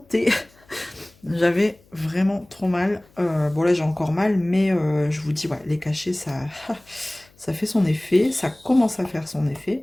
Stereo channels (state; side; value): noise; left; hum, 30 dB below the sound